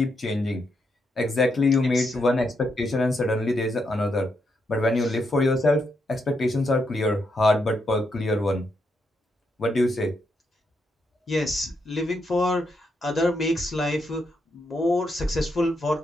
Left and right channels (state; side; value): normal; both; correlation 0.80